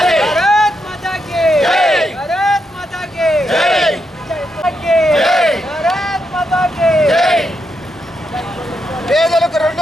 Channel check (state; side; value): normal; both; correlation 0.82